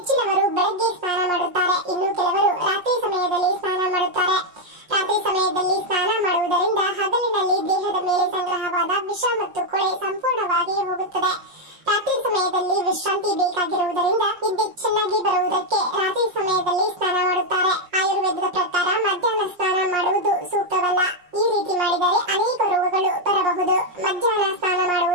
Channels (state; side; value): late; left; 5.6 ms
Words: ಬೆಳಗ್ಗೆ ಸ್ನಾನ ಮಾಡುತ್ತಾರೆ, ಇನ್ನು ಕೆಲವರು ರಾತ್ರಿ ಸಮಯದಲ್ಲಿ ಸ್ನಾನ ಮಾಡುತ್ತಾರೆ. ರಾತ್ರಿ ಸಮಯದಲ್ಲಿ ಸ್ನಾನ ಮಾಡುವುದರಿಂದ ಹಗಲಿನಲ್ಲಿ ದೇಹದ ಮೇಲೆ ಸಂಗ್ರಹವಾದ ವಿಷ ಮತ್ತು ಕೊಳೆ ಸಂಪೂರ್ಣವಾಗಿ ಹೋಗುತ್ತದೆ. ರಾತ್ರಿ ಸಮಯದಲ್ಲಿ ವಿಶ್ರಾಂತಿ ಬೇಕಾಗಿರುವುದರಿಂದ ನಿದ್ದೆ ಚೆನ್ನಾಗಿ ಬರುವುದಕ್ಕೆ ರಾತ್ರಿ ಸಮಯದಲ್ಲಿ ಸ್ನಾನ ಮಾಡುತ್ತಾರೆ. ಆಯುರ್ವೇದದ ಪ್ರಕಾರ ಮಧ್ಯಾಹ್ನ ಸ್ನಾನ ಮಾಡುವುದು ಸೂಕ್ತವಲ್ಲ. ಈ ರೀತಿ ಮಾಡಿದರೆ ಅನೇಕ ರೋಗಗಳು ಬರಬಹುದು. ಮಧ್ಯಾಹ್ನ ಸ್ನಾನ